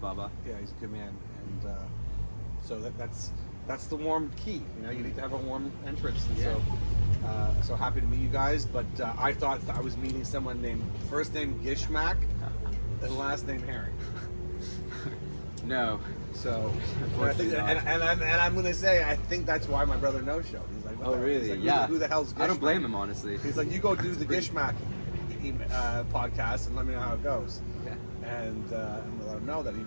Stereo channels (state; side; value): inverted; both; correlation -1.00